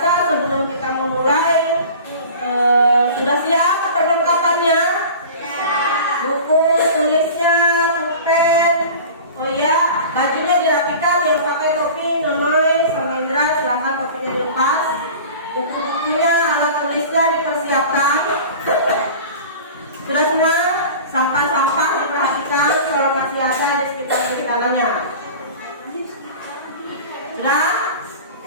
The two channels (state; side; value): inverted; both; correlation -0.38